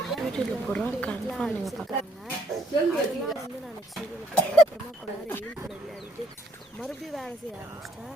அதெல்லாம் வந்து நான் நெக்ஸ்ட் வீடியோவில் போடுறேன். அப்புறமா கொஞ்ச நேரம் எயில் கூட விளையாடிட்டு மறுபடியும் வேலை செய்ய ஆரம்பிச்சிட்டேன்.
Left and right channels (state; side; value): normal; both; correlation 0.66